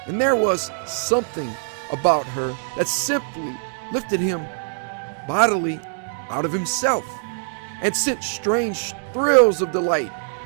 and there was something about her that simply lifted him bodily out of himself and sent strange thrills of delight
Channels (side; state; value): left; silent; digital silence